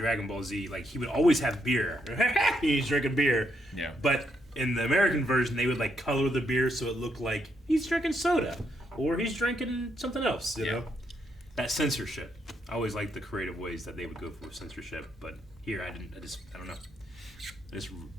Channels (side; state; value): both; normal; correlation 0.77